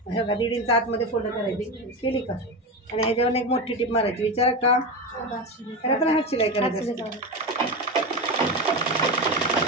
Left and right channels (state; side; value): normal; both; correlation 0.19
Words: 1.5 इंच आतमध्ये फोल्ड करायची. केली का, आणि ह्याच्यावर एक मोठी टिप मारायची. विचारा का, त्याला पण हात शिलाई करायची.